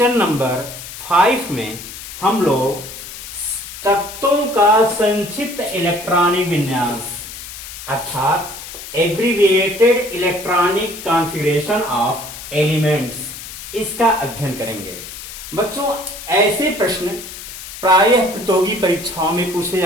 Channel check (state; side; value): noise; left; hiss, 12 dB below the sound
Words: नंबर 5 में हम लोग तत्वों का संक्षिप्त इलेक्ट्रॉनिक विन्यास अर्थात abbreviated electronic configuration of elements इसका अध्ययन करेंगे। बच्चों, ऐसे प्रश्न प्रायः प्रतियोगी परीक्षाओं में पूछे